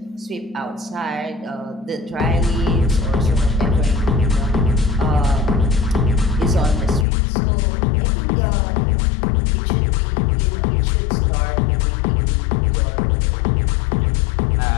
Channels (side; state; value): right; drops out; at 7.1 s